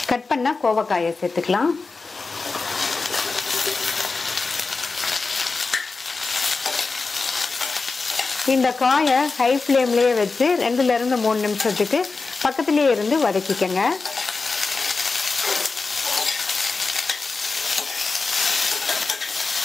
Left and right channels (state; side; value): quieter; right; 4.1 dB